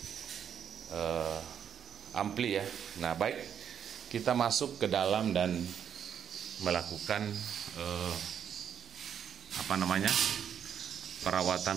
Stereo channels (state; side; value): quieter; left; 8.5 dB